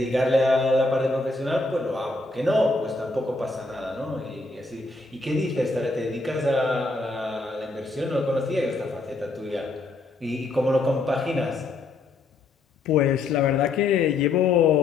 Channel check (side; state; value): right; quieter; 3.3 dB